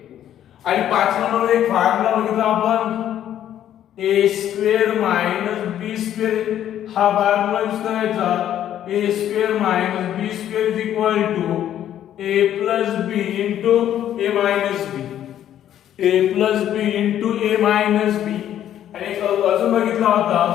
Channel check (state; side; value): quieter; right; 11.0 dB